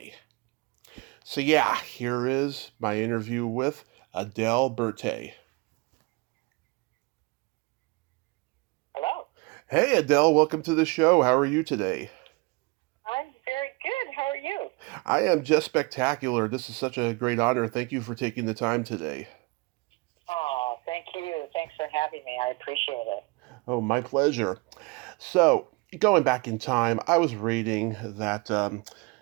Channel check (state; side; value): quieter; left; 26.8 dB